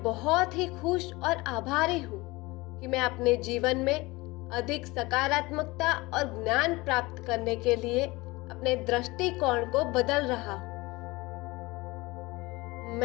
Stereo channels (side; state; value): right; quieter; 22.3 dB